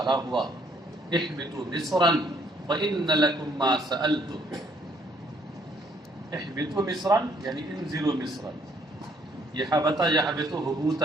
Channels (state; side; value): normal; both; correlation 0.66